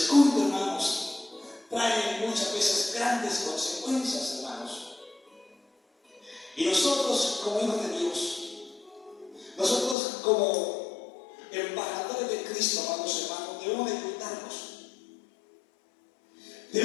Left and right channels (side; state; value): right; drops out; at 10.0 s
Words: hermanos, trae muchas veces grandes consecuencias, hermanos. Y nosotros, como hijos de Dios, nosotros como embajadores de Cristo, amados hermanos, debemos de cuidarnos.